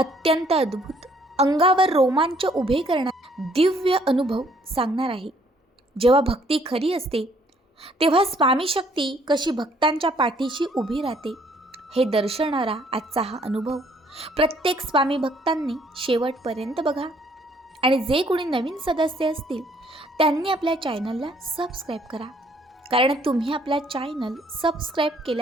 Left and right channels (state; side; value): normal; both; correlation 0.63